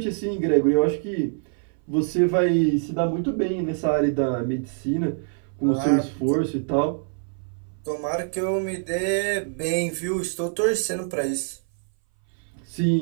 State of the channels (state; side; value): silent; left; 60 dB below the other